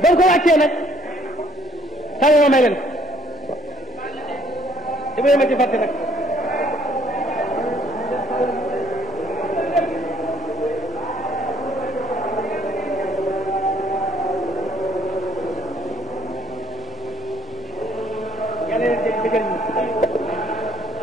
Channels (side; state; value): both; normal; correlation 0.62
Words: ba ko wàccee nag taw ma may leen dama ma ci fàtte nag